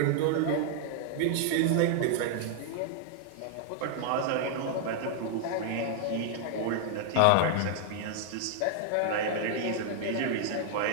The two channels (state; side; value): different; both; correlation 0.00